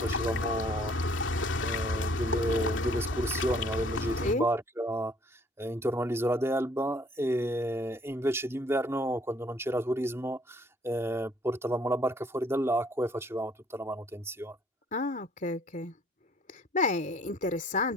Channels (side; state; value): both; normal; correlation 0.60